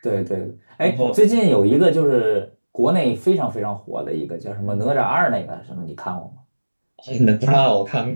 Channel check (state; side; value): inverted; both; correlation -1.00